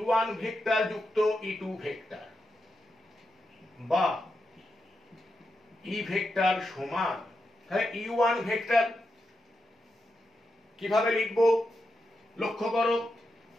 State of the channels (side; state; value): both; normal; correlation 0.86